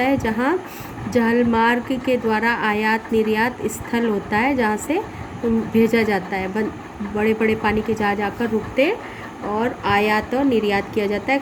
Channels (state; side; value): identical; both; correlation 1.00